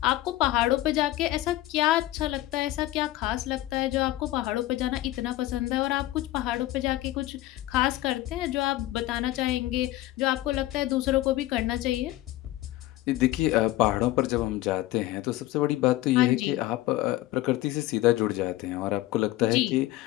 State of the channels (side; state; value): right; quieter; 16.2 dB